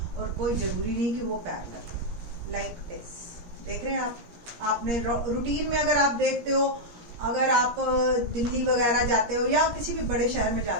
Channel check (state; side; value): late; left; 17 ms